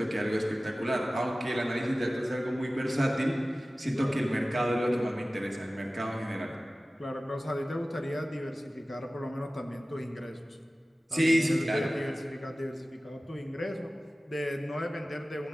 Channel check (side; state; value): both; normal; correlation 0.97